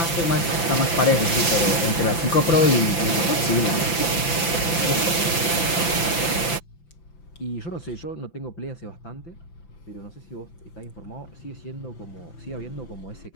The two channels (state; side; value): late; right; 5.9 ms